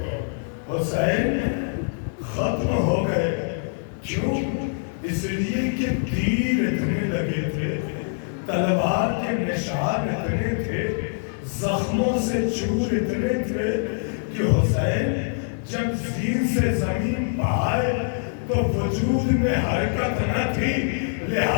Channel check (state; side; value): silent; right; digital silence